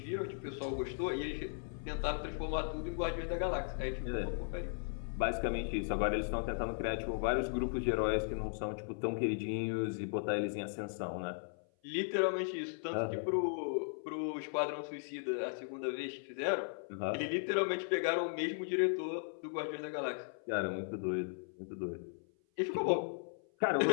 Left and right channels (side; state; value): right; silent; 53 dB below the other